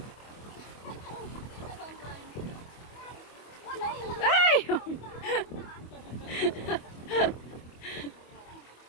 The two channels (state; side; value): late; right; 25 ms